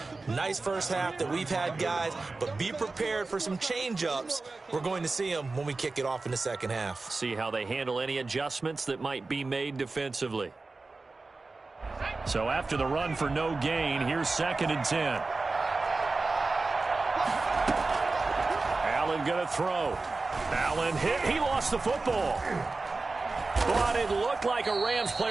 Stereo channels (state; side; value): quieter; left; 3.6 dB